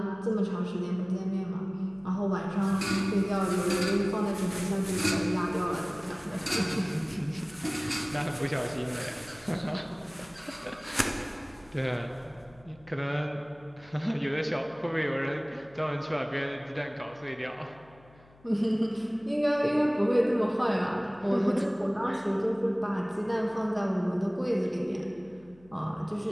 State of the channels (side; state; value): left; noise; hum, 27 dB below the sound